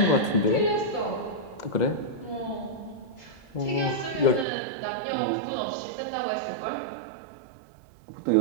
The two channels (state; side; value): drops out; left; at 4.5 s